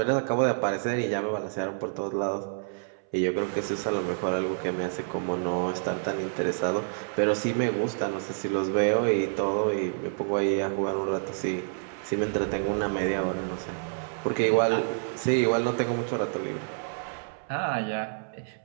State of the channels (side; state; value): left; silent; 59 dB below the other